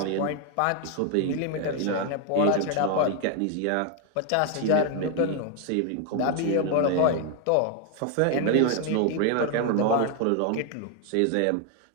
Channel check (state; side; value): different; both; correlation 0.01